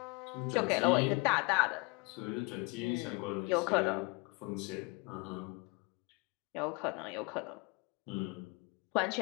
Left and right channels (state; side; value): quieter; right; 27.7 dB